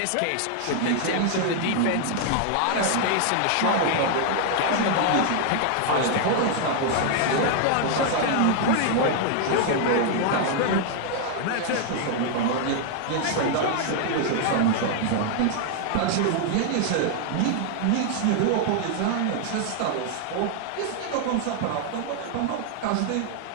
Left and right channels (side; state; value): both; different; correlation 0.00